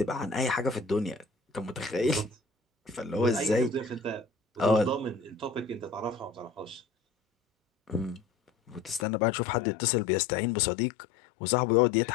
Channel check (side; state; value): right; drops out; at 9.1 s